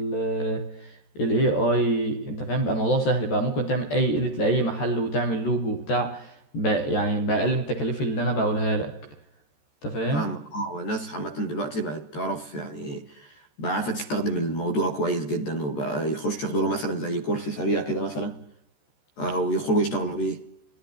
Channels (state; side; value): late; right; 13 ms